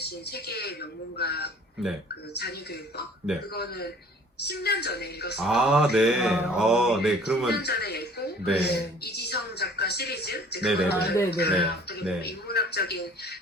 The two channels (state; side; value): normal; both; correlation 0.51